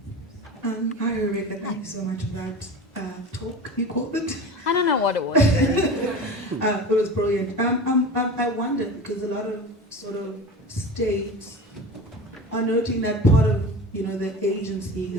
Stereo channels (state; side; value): normal; both; correlation 0.32